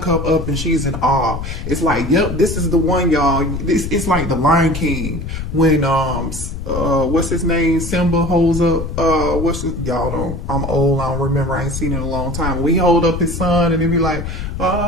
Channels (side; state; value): left; noise; rumble, 6 dB below the sound